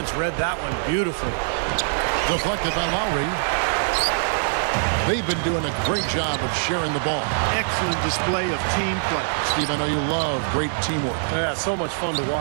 read that one beautifully. Deflected by Lowry. They've been doing a great job of sharing the ball. Excellent display of team play. Steve, I know you love great teamwork. Yeah, so much fun to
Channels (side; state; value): left; silent; digital silence